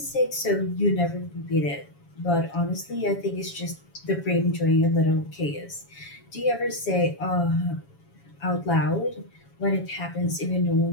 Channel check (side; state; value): right; late; 7.2 ms